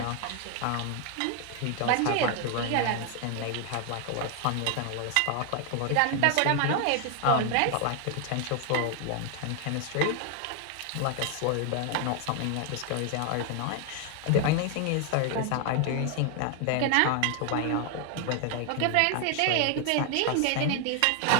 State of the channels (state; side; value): different; both; correlation 0.00